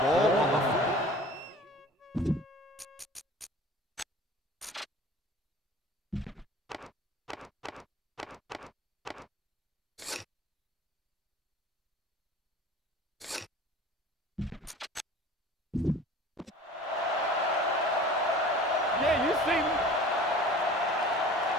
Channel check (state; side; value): normal; both; correlation 0.42